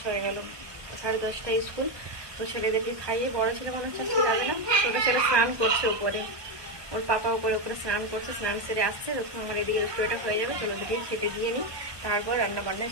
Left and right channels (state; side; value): late; left; 1.2 ms